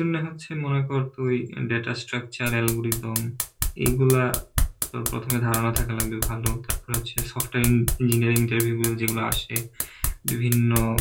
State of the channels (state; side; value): identical; both; correlation 1.00